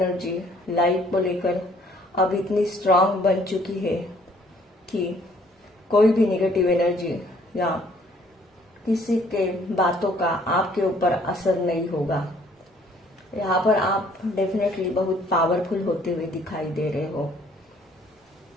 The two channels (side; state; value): both; normal; correlation 0.61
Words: लाइफ को लेकर अब इतनी स्ट्रांग बन चुकी है कि कोई भी नेगेटिव एनर्जी या किसी के बातों का आपके ऊपर असर नहीं होगा। यहाँ पर आप डेफिनेटली बहुत पावरफुल होते हुए दिखाई दे रहे हो।